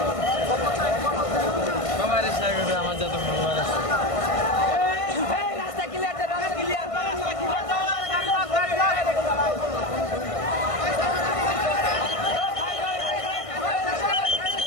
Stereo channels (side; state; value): right; late; 1.5 ms